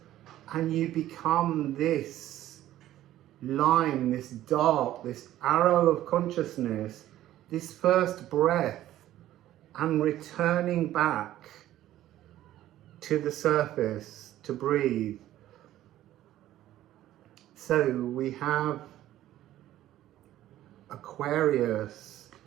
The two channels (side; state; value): left; quieter; 13.6 dB